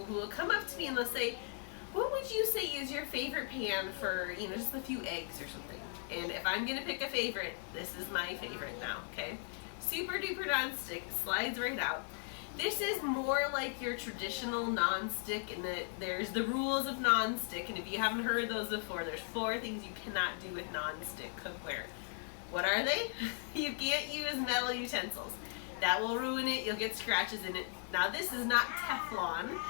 who will come up to me and they'll say, what would you say is your favorite pan for, just a few eggs or something? And if I'm going to pick a favorite, this is my favorite now, okay? Super duper non-stick, slides right out. This is more like your traditional non-stick in that there's the rules of non-stick, and if you haven't heard those before, there's 4 things you cannot do with non-stick cookware. What are they? You can't use metal utensils. That will ruin it, you'll get scratches in it. Now this is not Teflon.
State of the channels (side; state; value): right; silent; 53 dB below the other